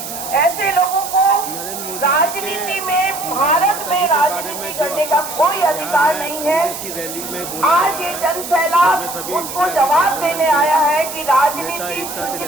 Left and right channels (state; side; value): noise; right; hiss, 9 dB below the sound